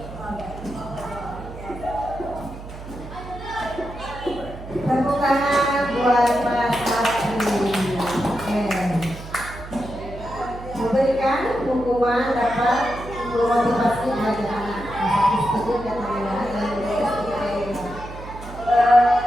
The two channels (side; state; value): right; noise; hum, 12 dB below the sound